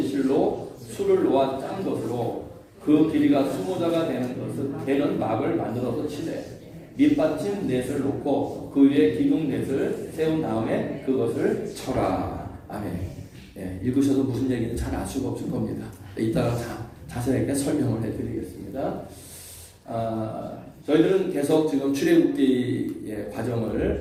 실로 술을 놓아 짠 것으로 그 길이가 20자가 되는 막을 만들어서 치되 밑받침 넷을 놓고 그 위에 기둥 넷을 세운 다음에 그것을 쳐라. 아멘. 읽으셔도 무슨 얘기인지 잘 알 수가 없을 겁니다. 이따가 자세하게 설명을 해드리겠습니다. 저희들은 계속 지금 출애굽기의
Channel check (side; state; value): both; identical; correlation 1.00